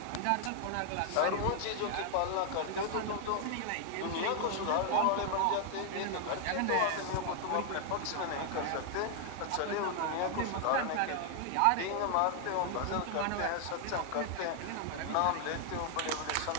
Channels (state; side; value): different; both; correlation 0.00